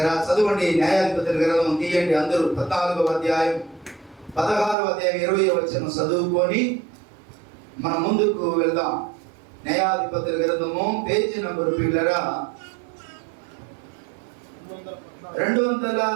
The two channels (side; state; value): left; drops out; at 4.8 s